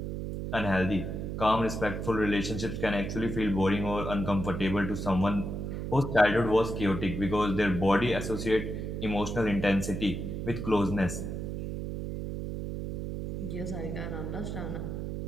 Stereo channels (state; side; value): noise; right; hum, 4 dB below the sound